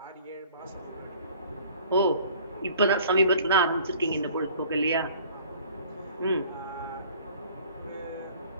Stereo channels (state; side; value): inverted; both; correlation -0.50